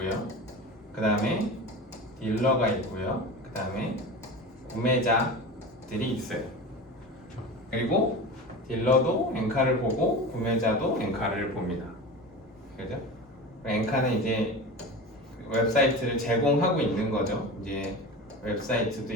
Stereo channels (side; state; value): both; normal; correlation 0.30